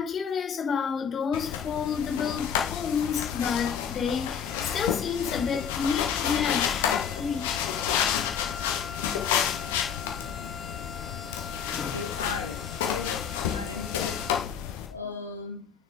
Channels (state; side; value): quieter; right; 7.5 dB